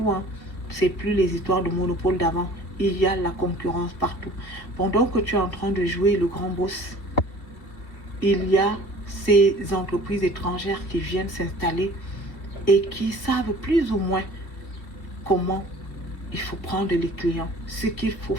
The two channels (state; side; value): late; right; 2.5 ms